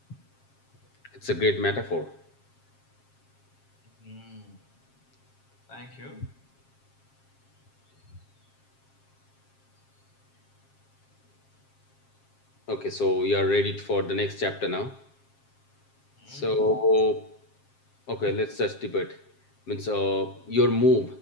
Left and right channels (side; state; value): right; late; 7.5 ms